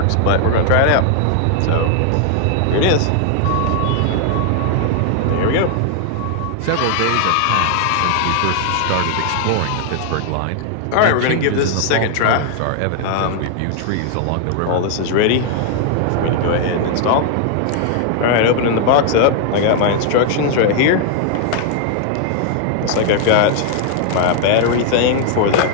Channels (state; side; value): different; both; correlation 0.00